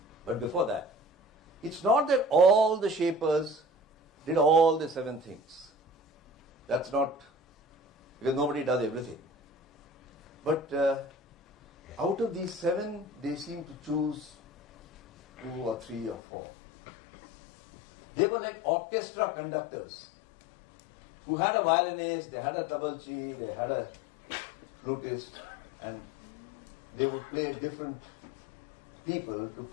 But before that, it's not that all the shapers did all the 7 things. That's not, because nobody does everything. But out of these 7, they seem to choose 2 or 3 or 4. They were like orchestra conductors who had a violinist, they had a tablachi, they had a flutist, and they would play different people to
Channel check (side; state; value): right; drops out; at 16.2 s